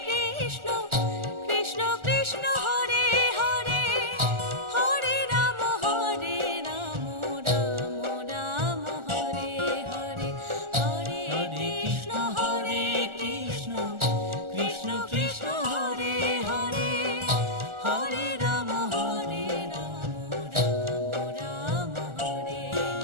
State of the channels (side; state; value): left; late; 1.4 ms